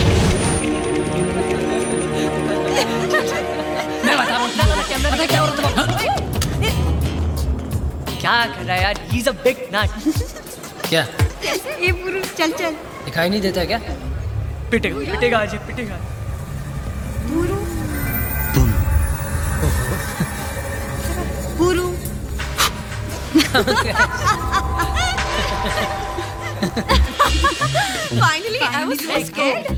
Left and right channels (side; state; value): both; identical; correlation 1.00